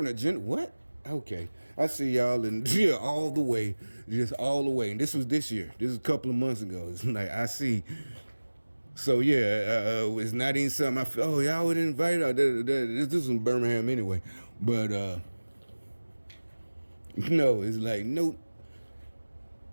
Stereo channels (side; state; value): both; inverted; correlation -1.00